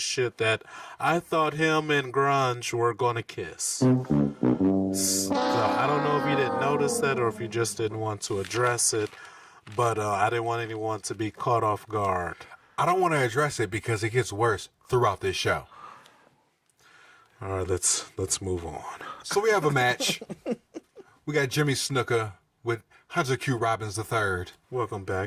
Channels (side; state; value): both; identical; correlation 1.00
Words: shit that I thought him and Grunge were gonna kiss. So I don't know if you didn't notice that or if you just didn't want to address it, but I didn't want anyone to be caught off guard. I don't want to address it because it gets worse throughout this show. All right, let's move on. So we have a match. We got Jimmy Snuka with Hunter Q. Robbins III. Welcome